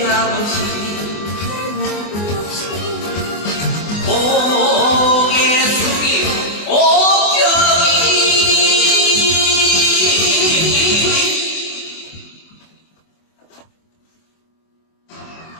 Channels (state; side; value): late; right; 24 ms